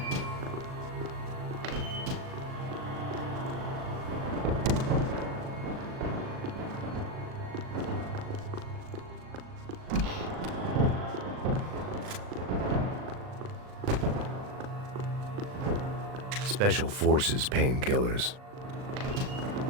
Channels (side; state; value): left; late; 38 ms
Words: Special Forces painkillers.